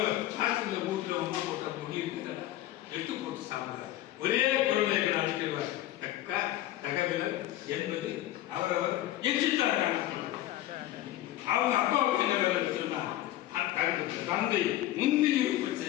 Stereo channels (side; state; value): right; quieter; 14.5 dB